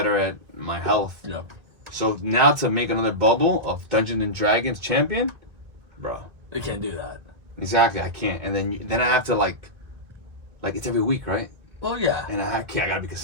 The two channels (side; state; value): left; late; 1.6 ms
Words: at my health. Yeah. So now to make another bubble of Dungeons and Dragons champion, bro. You can't do that. Exactly, I can't. And then I have to like it's every week, right? Well, yeah. And I gotta be